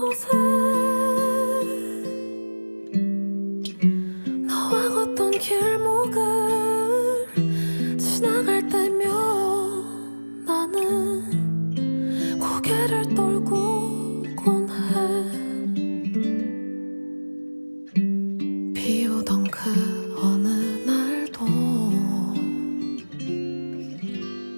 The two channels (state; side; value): inverted; both; correlation -1.00